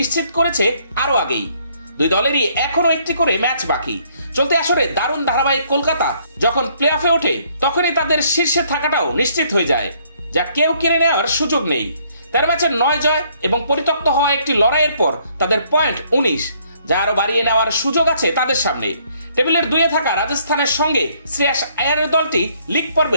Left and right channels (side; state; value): both; inverted; correlation -0.66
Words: করেছে আরো আগেই। 2 দলেরই এখনো একটি করে ম্যাচ বাকি। চলতি আসরে দারুণ ধারাবাহিক কলকাতা যখন প্লে অফে ওঠে তখনই তাদের শীর্ষে থাকাটাও নিশ্চিত হয়ে যায়, যা কেউ কেড়ে নেওয়ার সুযোগ নেই। 13 ম্যাচের 9 জয় এবং পরিত্যক্ত হওয়া একটি লড়াইয়ের পর তাদের পয়েন্ট 19, যা আরো বাড়িয়ে নেওয়ার সুযোগ আছে তাদের সামনে। টেবিলের 2-এ থাকা রাজস্থানের সঙ্গে শ্রেয়াস আয়ারের দলটি লিগ